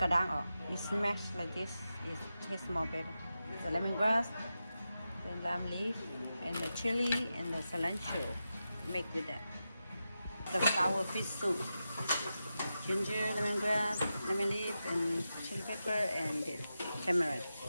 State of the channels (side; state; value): both; inverted; correlation -0.90